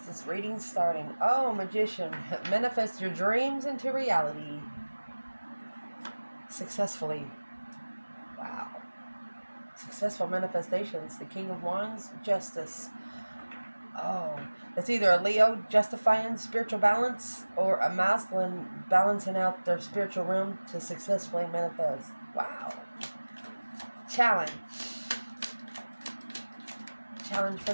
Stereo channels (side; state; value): both; inverted; correlation -1.00